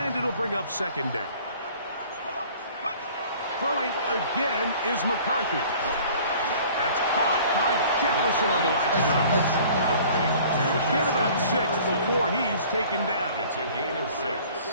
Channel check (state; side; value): inverted; both; correlation -0.50